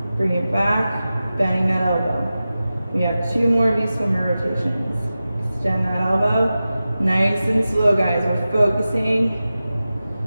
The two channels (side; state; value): both; inverted; correlation -0.94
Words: Bring it back. Bending that elbow. We have 2 more of these swimmer rotations. Extend that elbow. Nice and slow, guys. We're focusing